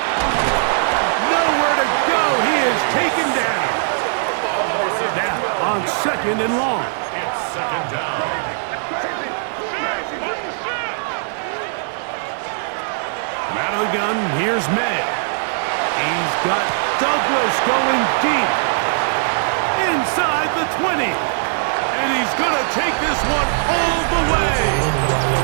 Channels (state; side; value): silent; left; digital silence